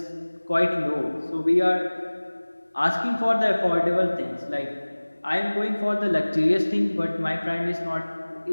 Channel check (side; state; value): both; inverted; correlation -1.00